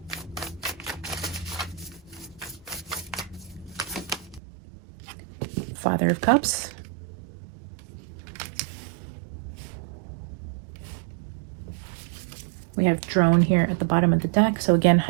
Father of Cups. We have drone here at the bottom of the deck. So again,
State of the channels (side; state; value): left; drops out; at 4.4 s